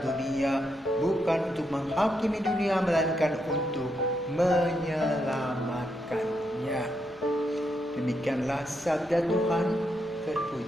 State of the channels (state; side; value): noise; left; hum, 27 dB below the sound